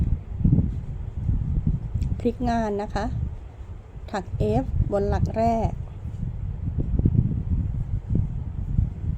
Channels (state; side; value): identical; both; correlation 1.00